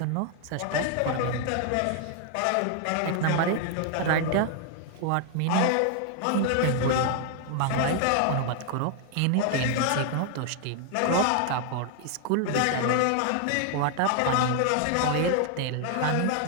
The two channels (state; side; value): different; both; correlation 0.00